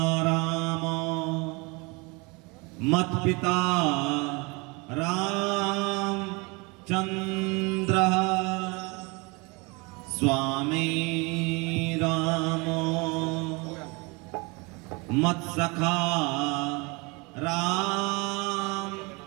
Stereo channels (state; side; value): quieter; left; 27.9 dB